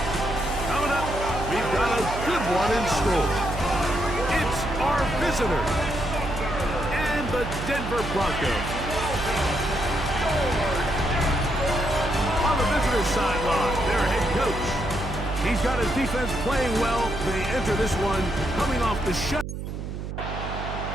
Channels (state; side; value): noise; right; hum, 6 dB below the sound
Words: Coming up, we've got a good one in store. It's our visitors and the Denver Broncos. On the visitors' sideline, their head coach. He's got his defense playing well. They enter this one coming off the shut.